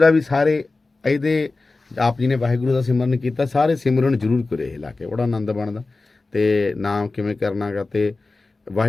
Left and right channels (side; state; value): right; quieter; 3.5 dB